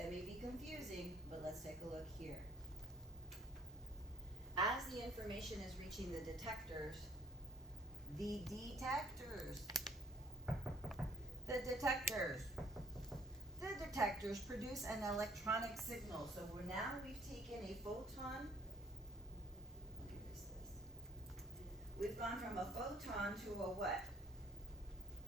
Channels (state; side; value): normal; both; correlation 0.57